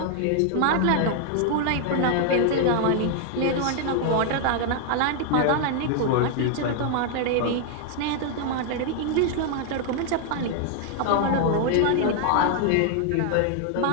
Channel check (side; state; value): both; different; correlation 0.00